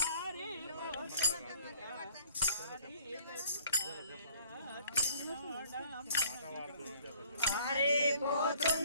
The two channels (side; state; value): both; inverted; correlation -0.57